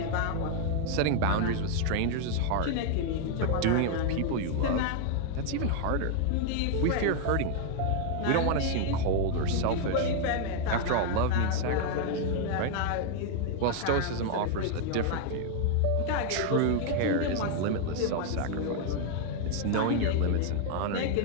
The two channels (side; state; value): both; different; correlation 0.00